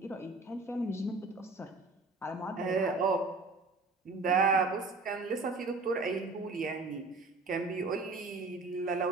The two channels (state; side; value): quieter; left; 3.6 dB